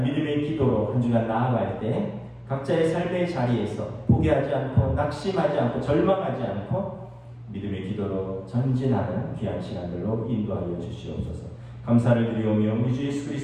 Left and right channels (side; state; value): both; identical; correlation 1.00